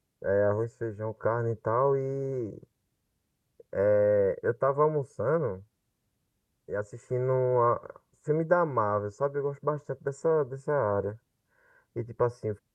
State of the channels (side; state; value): both; identical; correlation 1.00